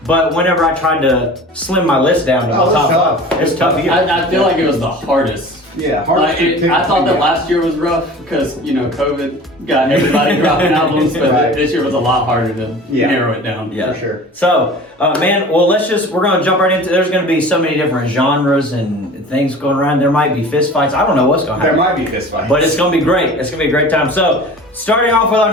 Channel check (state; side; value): normal; both; correlation 0.40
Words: But whenever I tried to slim my list down to my it's top tough. 5, it's tough year. I feel like it was the hardest. Yeah, hard Like, to pick I thought that between last year was rough because, COVID got everybody dropping albums, but Right. this year was a lot harder to narrow it down. Yeah. for sure. So, man, well, we're gonna jump right into, there's gonna be so many different genres and things going around. There might be fist fights. I don't know what's gonna There happen. might be fist fights. But it's gonna be great. It's gonna be a great time. So, starting off with our